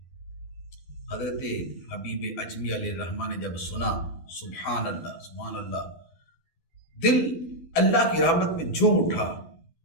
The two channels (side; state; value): right; late; 12 ms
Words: حضرت حبیب اعجمی علیہ رحمہ نے جب سنا، سبحان اللہ سبحان اللہ، دل اللہ کی رحمت میں جھوم اٹھا